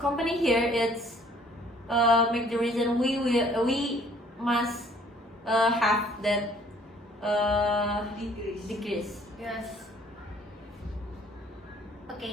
here it's make the reason we must have that decrease. Yes.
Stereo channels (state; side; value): normal; both; correlation 0.58